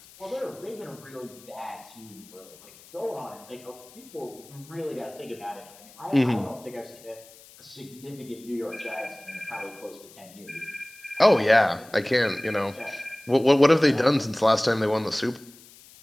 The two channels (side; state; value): left; noise; hiss, 22 dB below the sound